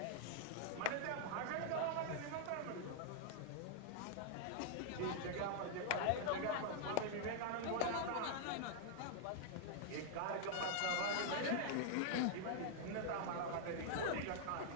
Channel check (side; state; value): both; different; correlation -0.01